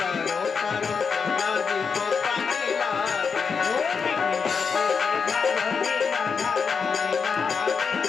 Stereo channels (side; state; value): right; quieter; 5.7 dB